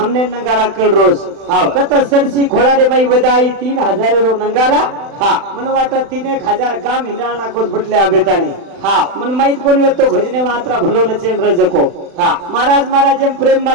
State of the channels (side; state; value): left; late; 36 ms